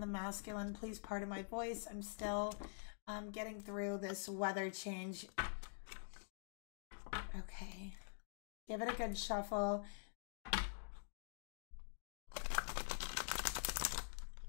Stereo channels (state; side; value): silent; right; digital silence